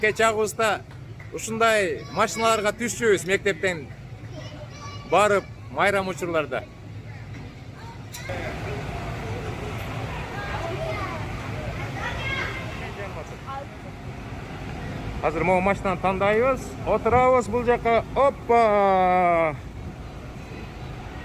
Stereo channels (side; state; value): both; identical; correlation 1.00